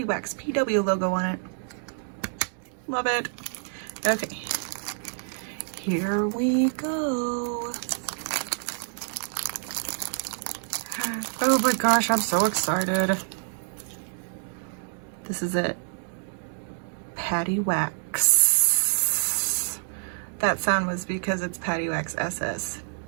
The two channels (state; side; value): silent; left; 60 dB below the other